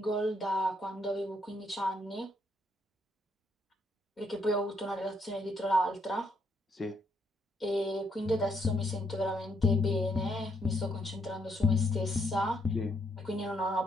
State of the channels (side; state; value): both; normal; correlation 0.73